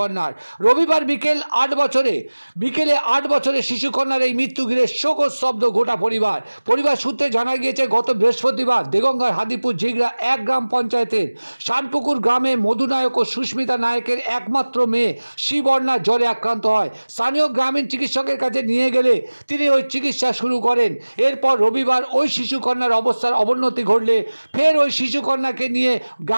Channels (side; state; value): both; inverted; correlation -1.00